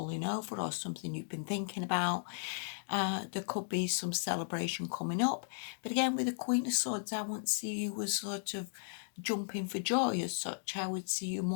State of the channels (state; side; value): silent; right; digital silence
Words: over or something you've been thinking about, there could be some celebration coming up. But again, with the Queen of Swords, I won't see you as sort of jumping for joy as such. I would see you